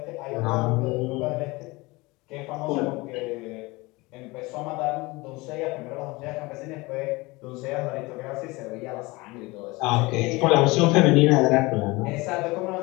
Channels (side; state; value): right; quieter; 23.1 dB